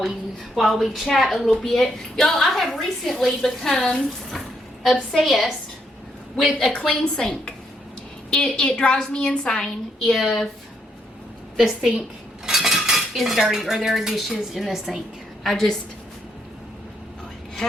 we chat a little bit. Y'all, I have recently become obsessed with a clean sink. It drives me insane if the sink is dirty or there are dishes in the sink.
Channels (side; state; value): both; normal; correlation 0.75